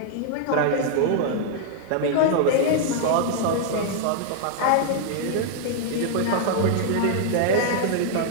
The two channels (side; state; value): both; different; correlation -0.01